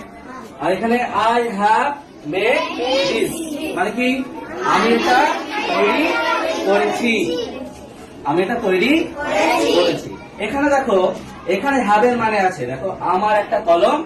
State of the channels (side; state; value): both; identical; correlation 1.00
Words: আর এখানে আই হ্যাভ মেড দিস, মানে কি আমি এটা তৈরি করেছি, আমি এটা তৈরি করেছি। এখানে দেখো এখানে হ্যাভের মানে আছে, দেখো আমার একটা কলম